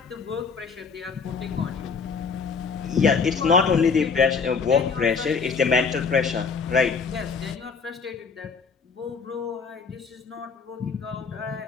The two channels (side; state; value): right; quieter; 5.2 dB